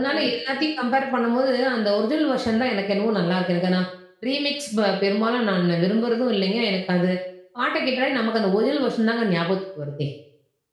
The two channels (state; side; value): identical; both; correlation 1.00